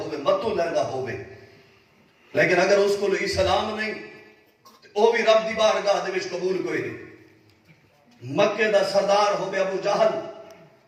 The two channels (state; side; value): identical; both; correlation 1.00